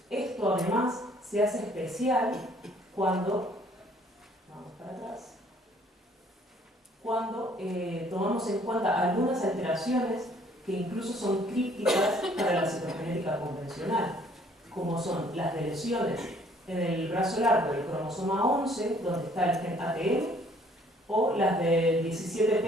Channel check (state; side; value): normal; both; correlation 0.60